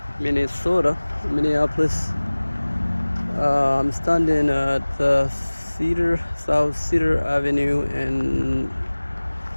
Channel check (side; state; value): both; inverted; correlation -1.00